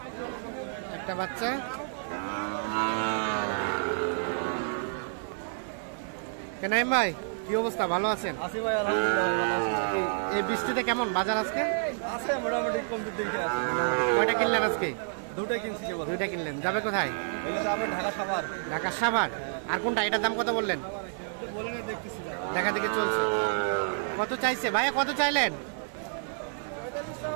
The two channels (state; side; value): silent; left; digital silence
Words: একটা বাচ্চা। কেনাইম ভাই, কি অবস্থা? ভালো আছেন? আছি ভাই, আলহামদুলিল্লাহ ভালো আছি। এই বৃষ্টিতে কেমন বাজার আজকে? আছে মোটামুটি কম দিকে আছে। কয়টা কিনলেন আজকে? দুটোই কিনছি কেবল। দুইটা কিনলেন। যাবে কোথায়? এগুলো যাবে ঢাকা সাভার। ঢাকা সাভার। আর কোনটা? এটার দাম কত বললেন? বলেন দেখতেছি, দেখা দেখে চলছে। কত চাইছে ভাইয়া? কত চাইলেন?